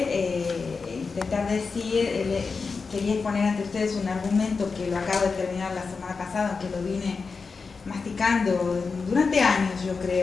intentar decir, quería exponer ante ustedes un argumento que lo acabo de terminar la semana pasada, que lo vine masticando durante años, yo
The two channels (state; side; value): quieter; right; 4.7 dB